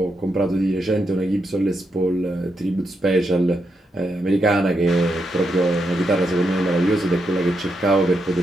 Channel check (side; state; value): both; normal; correlation 0.83